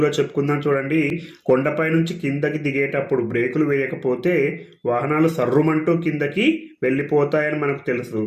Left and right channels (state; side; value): identical; both; correlation 1.00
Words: చెప్పుకుందాం. చూడండి, కొండపై నుంచి కిందకి దిగేటప్పుడు బ్రేకులు వేయకపోతే వాహనాలు సర్రుమంటూ కిందకి వెళ్ళిపోతాయని మనకు తెలుసు.